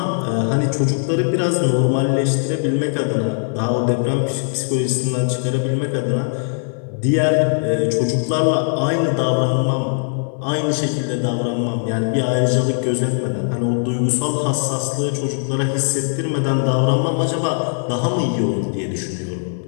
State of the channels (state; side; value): silent; right; 66 dB below the other